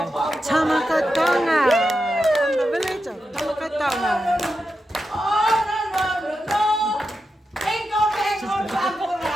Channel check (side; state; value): both; normal; correlation 0.88